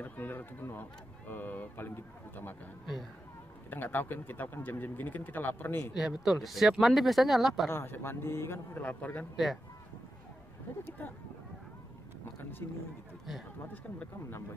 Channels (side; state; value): both; normal; correlation 0.89